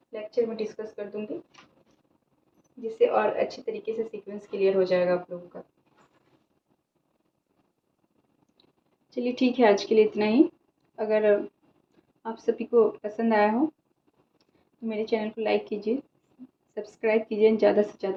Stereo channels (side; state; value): both; identical; correlation 1.00